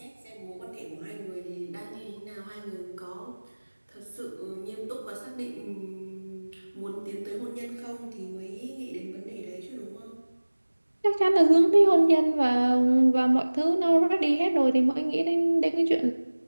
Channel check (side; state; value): both; inverted; correlation -1.00